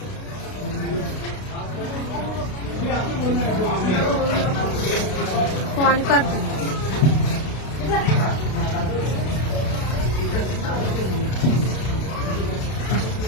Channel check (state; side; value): late; right; 32 ms